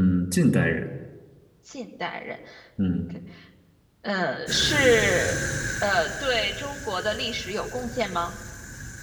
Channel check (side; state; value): both; identical; correlation 1.00